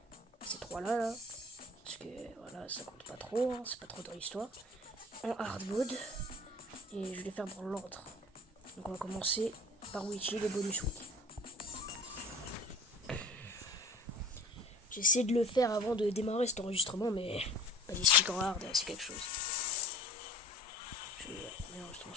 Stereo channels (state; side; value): normal; both; correlation 0.43